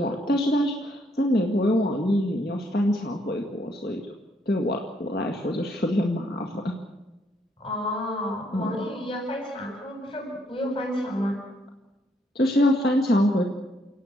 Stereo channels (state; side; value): normal; both; correlation 0.72